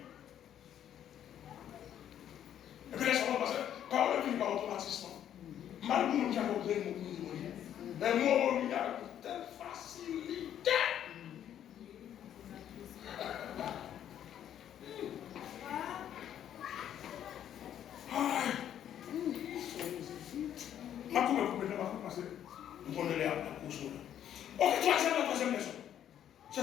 Et puis là, ça va passer par le vie, par automatisme. Malgré nous qui avons besoin de nous, mais moi, il y a une telle facilité. Ma coupe est passer. Nous prenons la course. Ok, troisième leçon.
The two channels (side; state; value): right; quieter; 10.3 dB